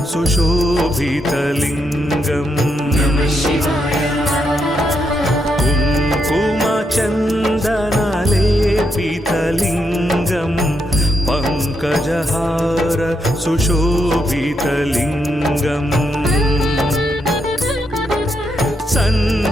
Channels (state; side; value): normal; both; correlation 0.80